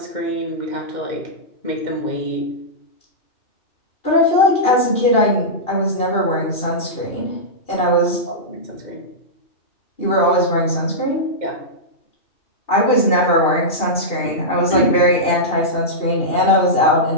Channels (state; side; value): late; right; 2.7 ms